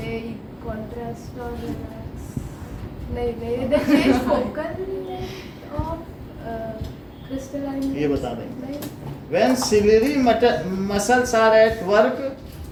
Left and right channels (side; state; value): both; identical; correlation 1.00